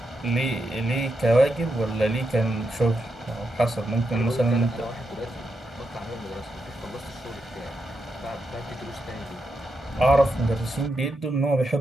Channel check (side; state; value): both; normal; correlation 0.84